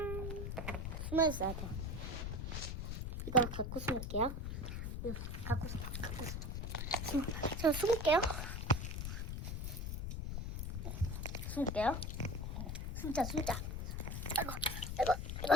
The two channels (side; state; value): left; noise; rumble, 3 dB below the sound